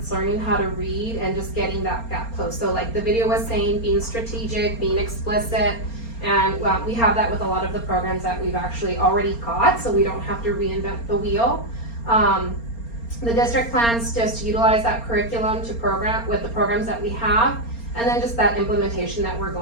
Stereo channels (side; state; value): right; late; 4.3 ms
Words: learning how to read and just getting that gap closed. So the video was saying, being strategic, being explicit, and we have that with a lot of the programs that we've actually already got, so we don't have to reinvent the wheel. The district plans just to utilize that curriculum to program with the programs that we have, and then just that implementation that we're